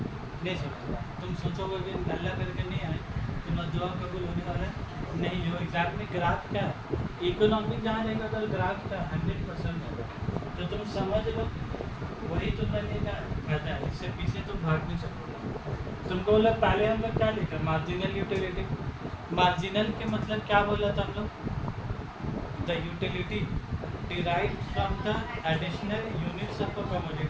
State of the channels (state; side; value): identical; both; correlation 1.00